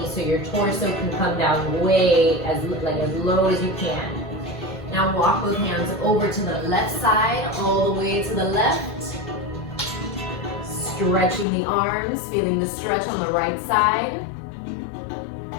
so your torso can come down way as low as you can. Now walk both hands over to the left side, all the way to the left. Stretching the arms, feeling the stretch on the right side.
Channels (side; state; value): right; drops out; at 11.5 s